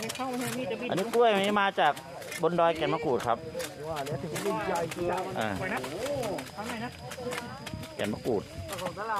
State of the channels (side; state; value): both; identical; correlation 1.00